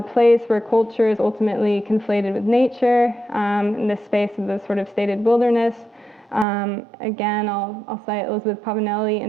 place where culture is ultimately conflated with nature, in this space of the sort of stated wilderness. Again, I'll cite Elizabeth Pavanelli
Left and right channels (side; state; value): left; drops out; at 6.5 s